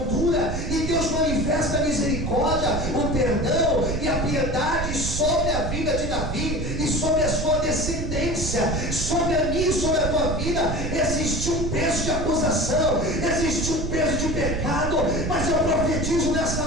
dura e Deus manifesta a misericórdia, o perdão e a piedade sobre a vida de Davi e sobre a sua descendência. Sobre a minha e sobre a tua vida existe um peso de acusação, existe um peso de pecado, mas eu profetizo nessa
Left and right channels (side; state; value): right; noise; rumble, 4 dB below the sound